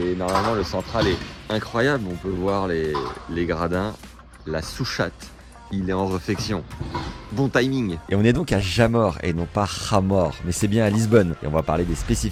normalement, le central est incroyable. On peut voir les gradins, la souchate. Il est en réflexion. Bon timing. Et on est donc à Jamor et non pas Jamor, mais c'est bien à Lisbonne. Et on va parler des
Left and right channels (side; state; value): both; identical; correlation 1.00